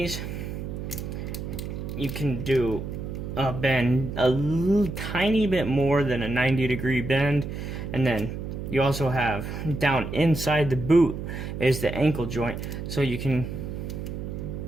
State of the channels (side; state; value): right; noise; hum, 6 dB below the sound